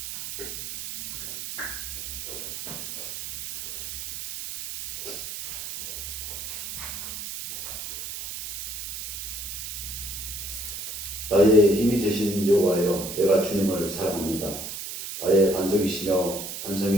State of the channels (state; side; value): noise; right; hiss, 7 dB below the sound